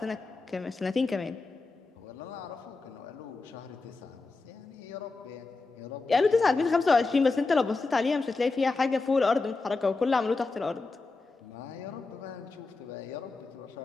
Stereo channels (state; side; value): quieter; right; 3.8 dB